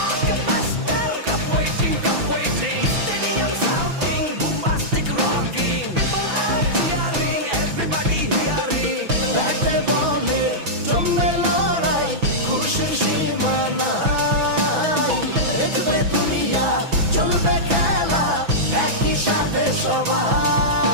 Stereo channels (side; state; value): left; late; 6.0 ms